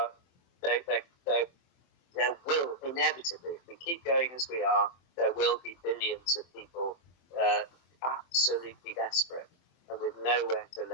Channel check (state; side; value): late; right; 23 ms